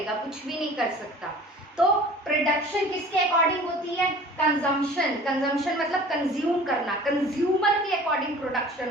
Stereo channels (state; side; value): normal; both; correlation 0.45